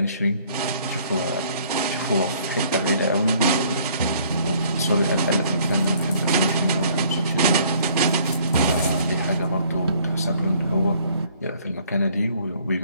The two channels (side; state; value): both; inverted; correlation -0.60